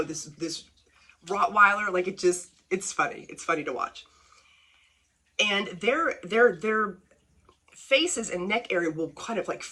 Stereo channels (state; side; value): identical; both; correlation 1.00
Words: Rottweiler. Like it's funny. It's funny to watch. And their faces and neck area will kind of like